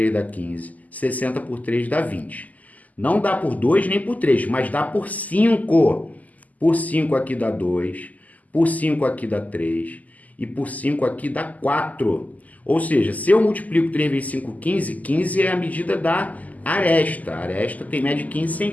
dá 15, 60 por 3 dá 20. Não dá por 2 nem por 3, mas dá por 5. Por 5 aqui dá 2, por 5 aqui dá 3 e por 5 aqui dá 4. Ou seja, se eu multiplico 3 vezes 5, 15, 15 é a medida da aresta. A aresta tem média de 15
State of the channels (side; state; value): right; late; 0.078 ms